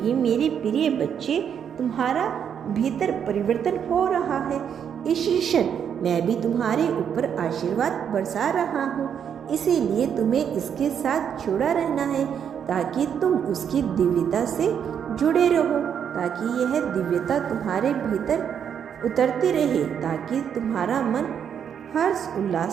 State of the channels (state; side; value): quieter; left; 8.2 dB